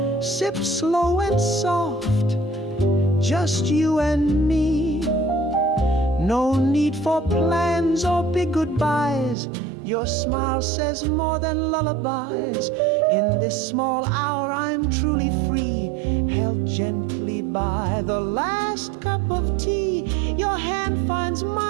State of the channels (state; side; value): drops out; left; at 9.3 s